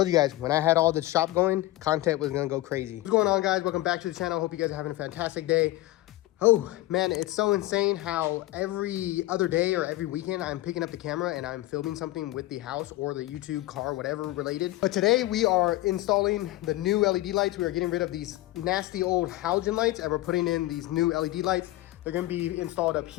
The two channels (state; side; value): quieter; right; 17.2 dB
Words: you guys, when I had all the shop going, content was gonna go crazy. What's going on, guys? Welcome back to the channel. Hope you guys are having a fantastic day. Oh man, it's so insane how every other day or every weekend I'm picking up the camera and I'm filming something with the house or the YouTube, car, whatever related. But today we are installing the new LED lights. We are getting rid of these nasty old halogen lights and we're putting in these new LED lights. They're gonna be installed up